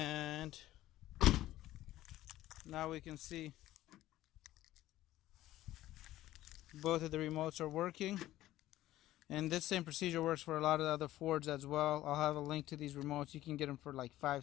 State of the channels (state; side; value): quieter; right; 14.9 dB